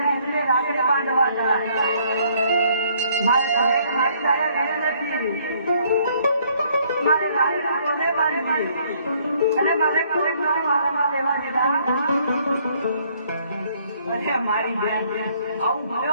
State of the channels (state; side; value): inverted; both; correlation -0.64